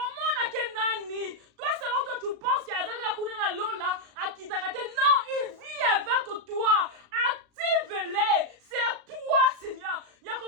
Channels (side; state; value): left; late; 36 ms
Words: à Kenani. Toi selon toi tu penses qu'il y a un lola à Kitakate. Non, il vit avec toi. Active-les. C'est à toi, Seigneur. Il y a